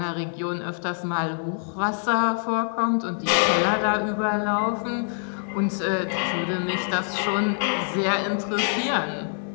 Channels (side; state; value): right; silent; digital silence